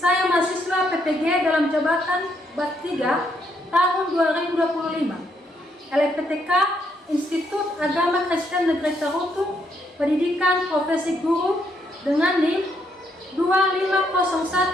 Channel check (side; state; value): both; normal; correlation 0.75